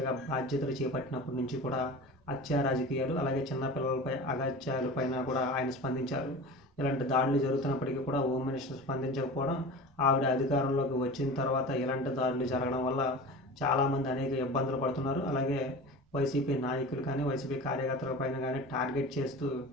బాధ్యతలు చేపట్టినప్పటి నుంచి కూడా హత్యా రాజకీయాలు, అలాగే చిన్న పిల్లలపై అఘాయిత్యాలపైన కూడా ఆయన స్పందించారు. ఇలాంటి దాడులు జరుగుతున్నప్పటికీ కూడా హోమ్ మినిస్టర్ స్పందించకపోవడం, ఆవిడ అధికారంలోకి వచ్చిన తర్వాత ఇలాంటి దాడులు జరగడం వల్ల చాలామంది అనేక ఇబ్బందులు పడుతున్నారు. అలాగే వైసీపీ నాయకులు కానీ, వైసీపీ కార్యకర్తల పైన కానీ టార్గెట్ చేస్తూ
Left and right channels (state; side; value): normal; both; correlation 0.34